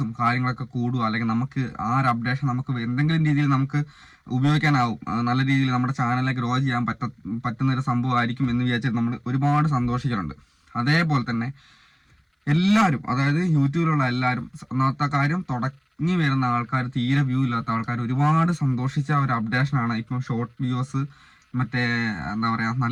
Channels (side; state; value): both; identical; correlation 1.00